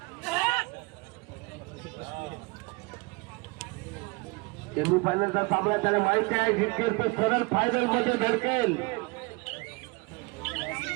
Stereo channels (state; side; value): quieter; left; 26.9 dB